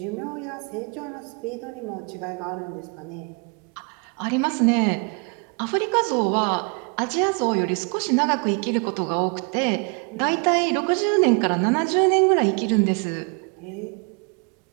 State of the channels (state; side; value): quieter; left; 34.5 dB